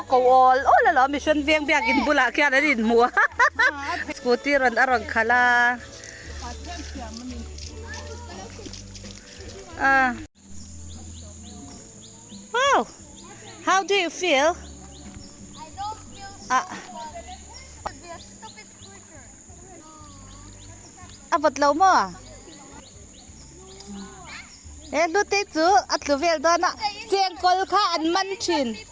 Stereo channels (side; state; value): both; identical; correlation 1.00